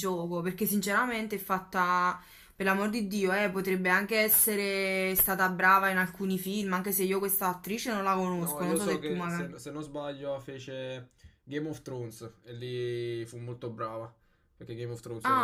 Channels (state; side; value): identical; both; correlation 1.00